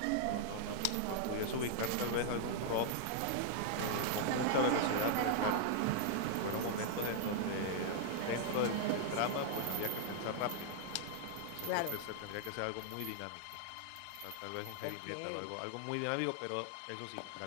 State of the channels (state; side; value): different; both; correlation -0.01